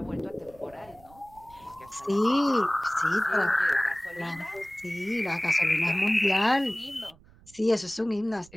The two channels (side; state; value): right; noise; rumble, 25 dB below the sound